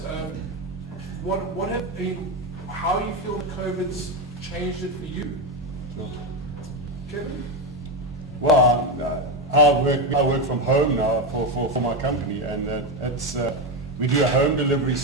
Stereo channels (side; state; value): both; normal; correlation 0.11